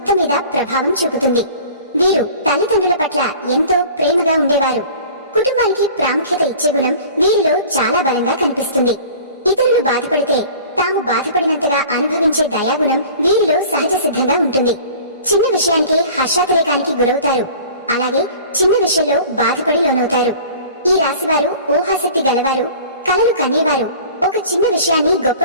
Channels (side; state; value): both; inverted; correlation -0.44